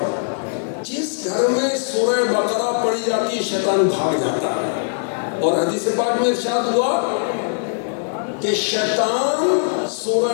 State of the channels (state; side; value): silent; right; digital silence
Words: جس گھر میں سورہ بقرہ پڑھی جاتی ہے شیطان بھاگ جاتا ہے. اور حدیث پاک میں ارشاد ہوا کہ شیطان